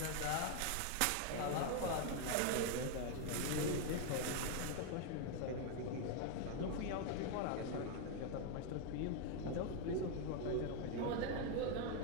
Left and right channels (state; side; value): different; both; correlation 0.01